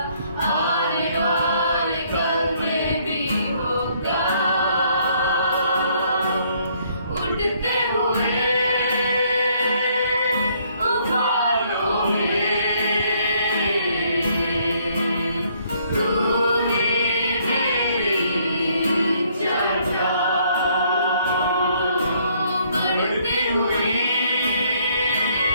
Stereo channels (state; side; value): inverted; both; correlation -0.66